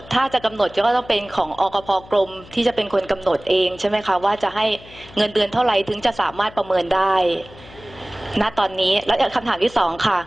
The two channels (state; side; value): noise; left; hum, 21 dB below the sound